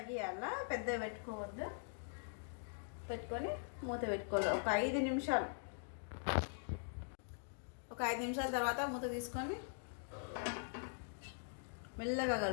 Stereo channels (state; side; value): silent; right; digital silence